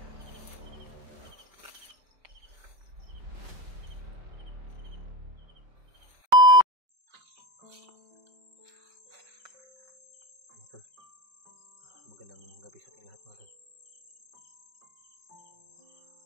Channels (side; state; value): left; late; 5.2 ms